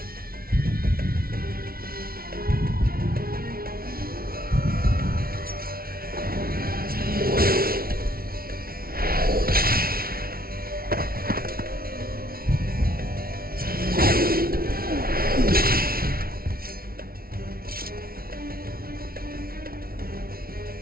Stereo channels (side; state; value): left; late; 0.43 ms